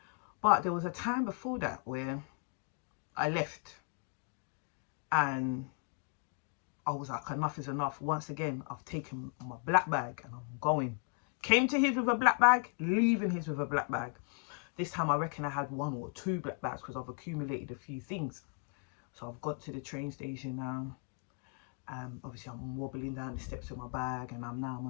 But there was a time before that where I left and I was like, enough is enough. Once again, I've taken my black bag and I'm going. Came to his with a black bag, leaving his with a black bag. This time I reckon I had 1 or 2 black bags because I've accumulated a few things. So I've got to the train station now. Obviously I'm wobbling down the steps with my bag, and I'm on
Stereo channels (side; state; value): right; quieter; 38.1 dB